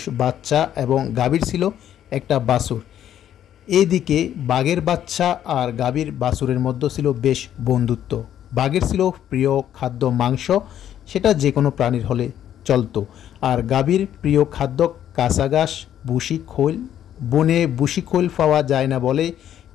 বাচ্চা এবং গাভীর ছিল একটা বাছুর। এদিকে বাঘের বাচ্চা আর গাভীর বাছুরের মধ্যে ছিল বেশ বন্ধুত্ব। বাঘের ছিল প্রিয় খাদ্য মাংস, সেটা যে কোনো প্রাণীর হলে চলতো। আর গাভীর প্রিয় খাদ্য কাঁচা ঘাস, ভুসি খৈল। বনে ভুসি খৈল পাওয়া যায় না বলে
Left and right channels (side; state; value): right; quieter; 10.7 dB